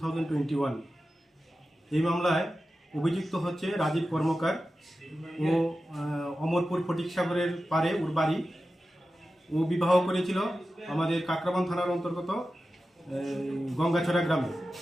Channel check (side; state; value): both; normal; correlation 0.93